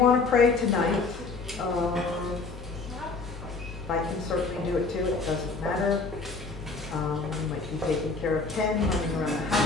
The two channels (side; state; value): right; quieter; 4.1 dB